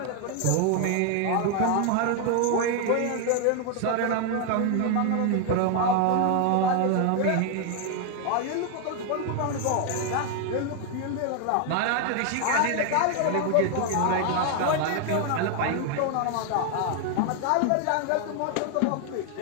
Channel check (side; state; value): both; different; correlation 0.00